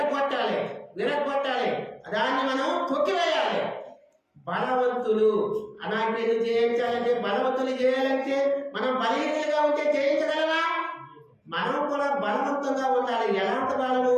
దాన్ని మనం తొక్కివేయాలి. బలవంతులు. అనాకీలు జయించాలంటే, బలవంతులు చేయాలంటే మనం బలహీనంగా ఉంటే జయించగలమా? మనం కూడా బలవంతంగా ఉండాలి. ఎలాంటి బలము?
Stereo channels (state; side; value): identical; both; correlation 1.00